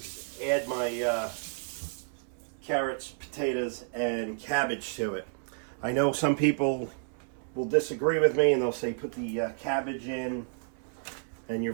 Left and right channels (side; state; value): left; silent; 57 dB below the other